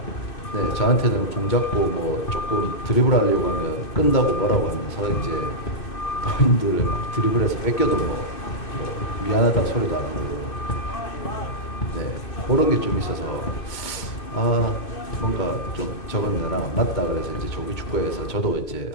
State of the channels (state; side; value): late; right; 2.2 ms